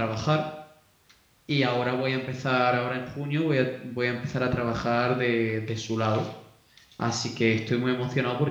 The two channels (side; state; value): both; identical; correlation 1.00